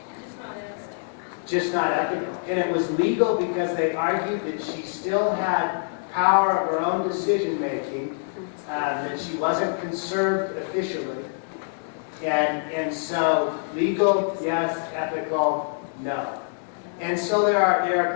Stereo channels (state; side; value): silent; right; digital silence